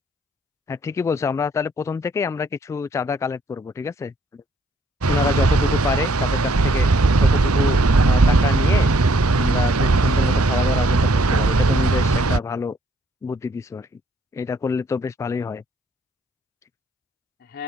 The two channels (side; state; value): both; normal; correlation 0.66